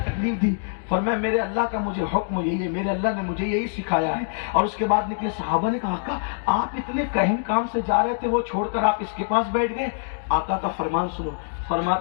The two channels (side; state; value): right; silent; digital silence